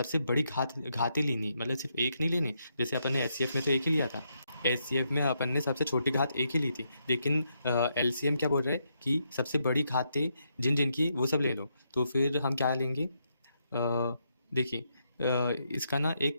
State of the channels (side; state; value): both; inverted; correlation -0.79